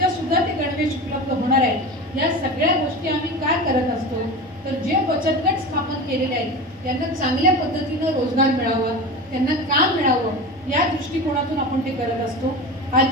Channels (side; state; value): both; normal; correlation 0.29